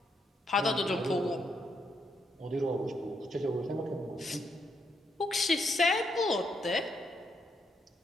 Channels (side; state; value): both; normal; correlation 0.77